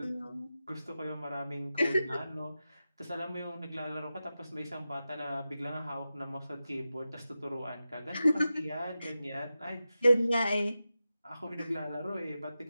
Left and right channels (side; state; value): both; inverted; correlation -0.92